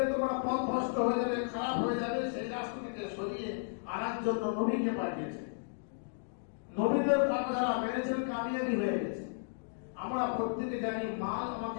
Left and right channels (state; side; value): silent; right; digital silence